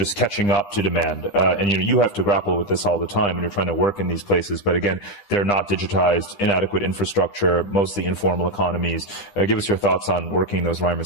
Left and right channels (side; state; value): right; late; 10 ms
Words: catching up to demand. And you have to grapple with this all the time when you're trying to work in these places. But again, they're not digitized, inadequate infrastructure, mostly informal economies. Give us your thoughts on working those